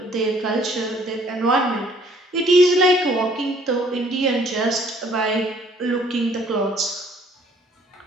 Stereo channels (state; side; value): normal; both; correlation 0.60